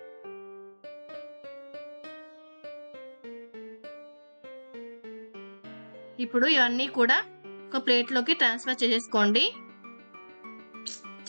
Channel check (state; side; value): inverted; both; correlation -1.00